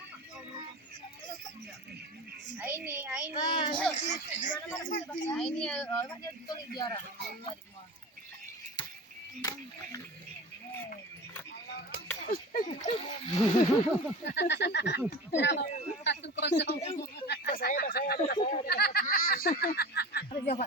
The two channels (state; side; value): normal; both; correlation 0.33